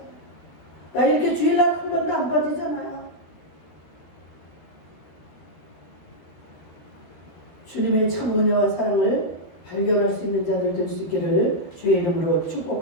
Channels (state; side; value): late; right; 13 ms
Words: 나 이렇게 주일날 한 번도 안 빠지잖아요. 주님의 참 은혜와 사랑을 발견할 수 있는 자들 될 수 있기를 주의 이름으로